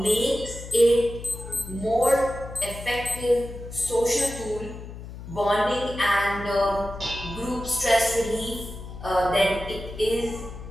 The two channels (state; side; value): noise; left; hum, 12 dB below the sound